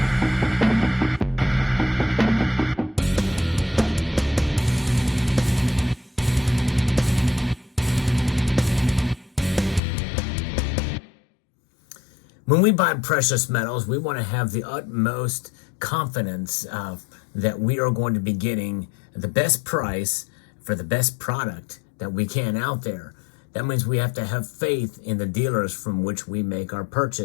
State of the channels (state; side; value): drops out; right; at 9.8 s